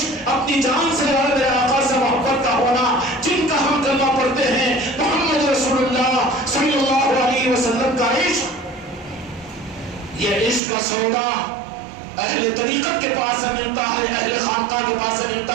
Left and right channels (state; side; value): drops out; left; at 10.6 s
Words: اپنی جان سے زیادہ میرے آقا سے محبت کا ہونا، جن کا ہم کلمہ پڑھتے ہیں محمد رسول اللہ صلی اللہ علیہ وسلم کا عشق، یہ عشق کا سودا اہل طریقت کے پاس سے ملتا ہے، اہل خانقاہ کے پاس سے